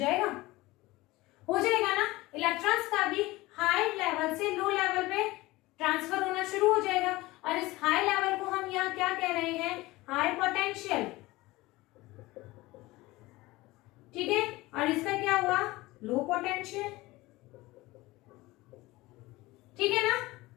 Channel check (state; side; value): quieter; right; 19.9 dB